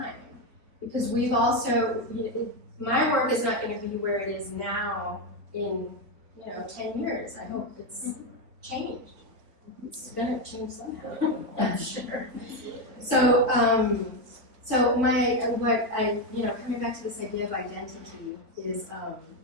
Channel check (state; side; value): late; left; 3.7 ms